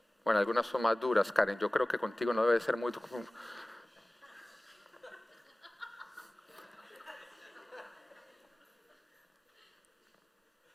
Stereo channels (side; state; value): both; normal; correlation 0.98